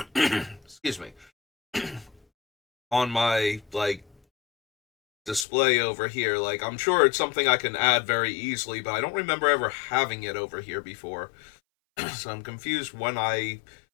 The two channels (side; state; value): right; drops out; at 5.5 s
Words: excuse me, on my, display over here. Like, I'm sure it's something I can add very easily, but I don't remember ever having it over here before. So I'm confused when I